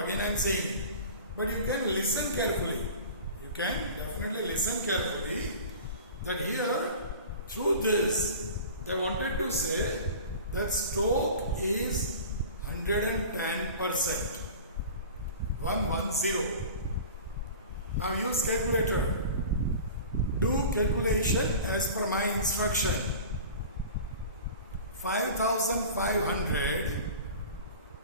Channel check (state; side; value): inverted; both; correlation -0.38